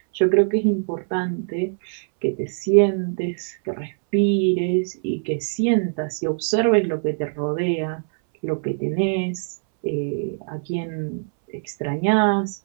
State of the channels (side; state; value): left; silent; 64 dB below the other